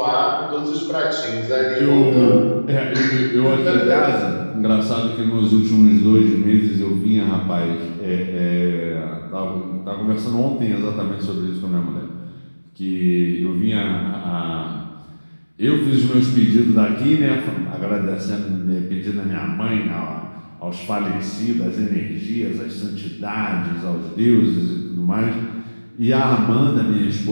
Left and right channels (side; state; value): both; inverted; correlation -1.00